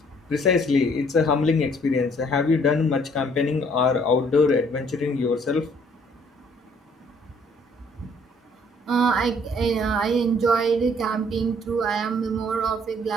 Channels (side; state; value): both; normal; correlation 0.61